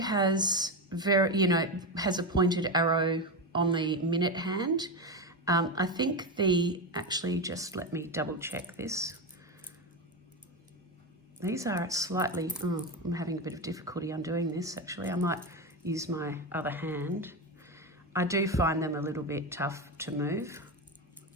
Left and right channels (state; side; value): normal; both; correlation 0.15